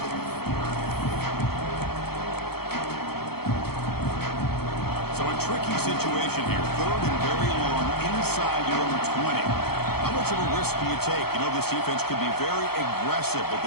So a tricky situation here. Third and very long inside your own 20. How much of a risk do you take? You know this defense could be very aggressive at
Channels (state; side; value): late; right; 0.96 ms